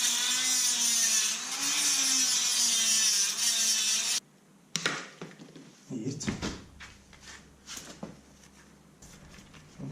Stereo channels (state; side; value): identical; both; correlation 1.00